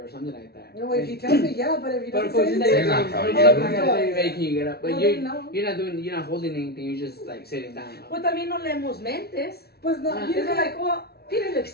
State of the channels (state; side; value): late; right; 0.46 ms